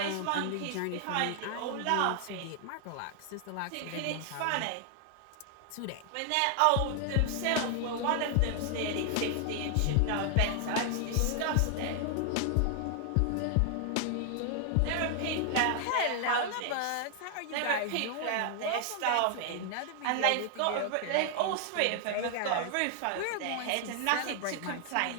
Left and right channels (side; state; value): both; different; correlation 0.00